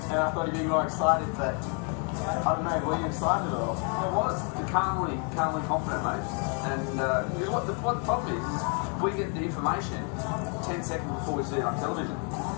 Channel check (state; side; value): quieter; right; 38.8 dB